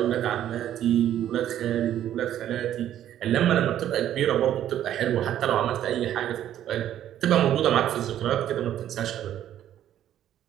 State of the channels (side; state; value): left; quieter; 11.4 dB